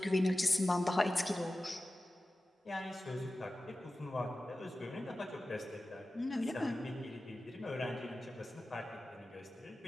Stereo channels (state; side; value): normal; both; correlation 0.95